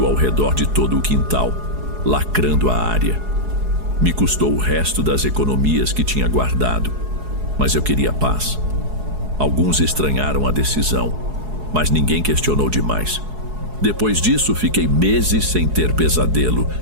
ao redor de todo o quintal, lacrando a área. Me custou o resto das economias que tinha guardado, mas eu queria paz. Alguns estranharam a decisão, mas ninguém questionou demais. Depois disso, fiquei meses sem ter pesadelo,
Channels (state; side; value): late; left; 4.7 ms